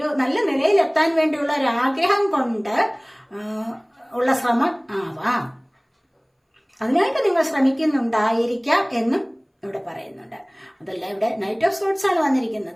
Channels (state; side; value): identical; both; correlation 1.00